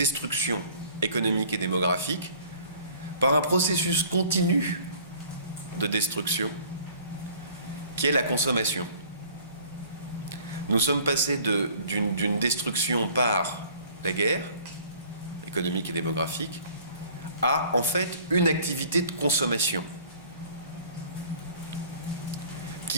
économique et démographique par un processus continu de destruction qui est la consommation. Nous sommes passés d'une destruction par la guerre économique et démographique à en fait une activité de consommation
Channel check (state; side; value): inverted; both; correlation -0.52